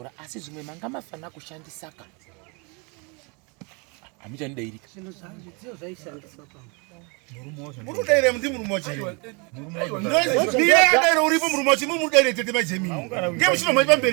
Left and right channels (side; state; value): left; quieter; 31.6 dB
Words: asi zvimwe manga mafana kushandisaka hamuchandidairika zvinhu zvidziyo zvaishandiswa pano murudaire muti murumochero ndiyadairo uripo murumochi mumudaire tete majemini ngemuchinomai